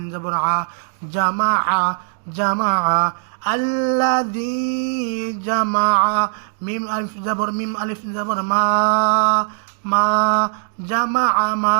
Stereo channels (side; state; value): left; silent; digital silence